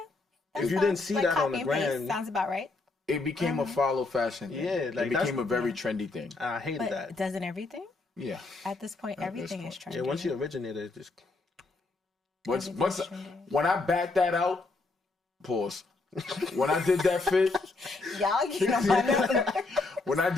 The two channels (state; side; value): quieter; right; 3.5 dB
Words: If you didn't see that on the gram, sounds about right. It became a follow fashion thing. Yeah, like, it became a very trendy thing. I hated But that. doesn't everything? Yeah. At this point, everything is trendy. Yeah, once you originated, it's just Once Everything's trendy. when I backed that out, pause. When I did that fit, Y'all get on my nerves. when I